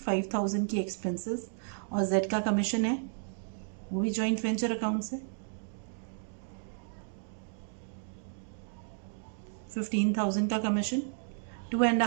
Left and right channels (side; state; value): left; silent; digital silence